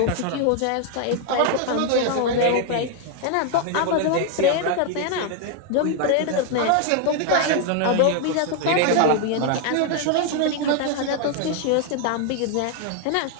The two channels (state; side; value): different; both; correlation 0.00